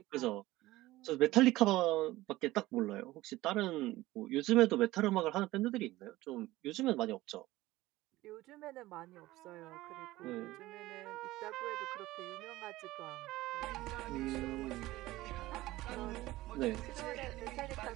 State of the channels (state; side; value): quieter; left; 17.6 dB